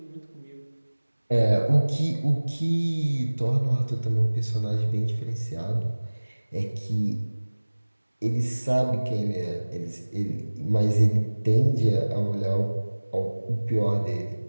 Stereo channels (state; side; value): inverted; both; correlation -1.00